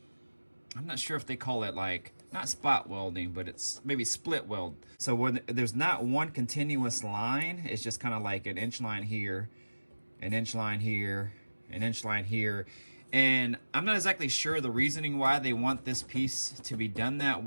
not sure if they call it, like, not spot welding, but it's maybe split weld. So when there's not one continuous line, it's just kind of like an inch line here, an inch line here, an inch line here. And I'm not exactly sure the reasoning why they want this piece to be done that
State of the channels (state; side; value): inverted; both; correlation -1.00